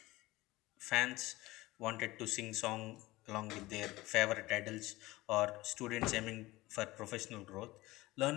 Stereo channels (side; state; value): right; quieter; 19.3 dB